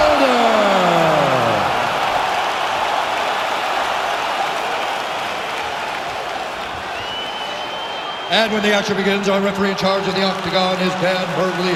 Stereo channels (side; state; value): both; identical; correlation 1.00